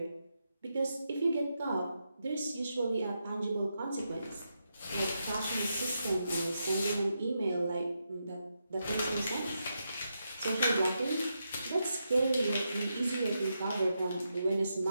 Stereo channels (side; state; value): both; inverted; correlation -0.85